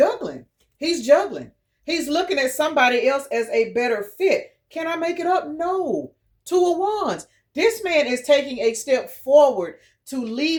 He's juggling. He's looking at somebody else as a better fit. Can I make it up? No. 2 of Wands. This man is taking a step forward to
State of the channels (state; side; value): identical; both; correlation 1.00